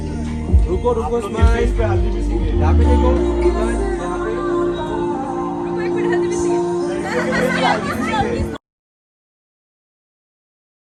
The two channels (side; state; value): both; identical; correlation 1.00